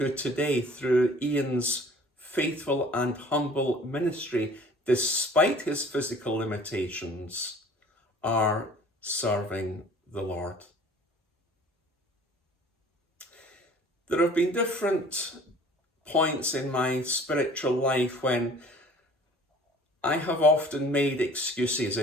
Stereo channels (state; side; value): normal; both; correlation 0.49